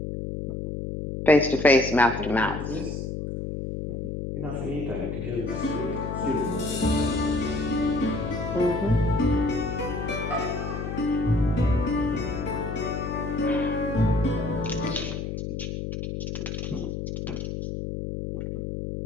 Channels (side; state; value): left; noise; hum, 4 dB below the sound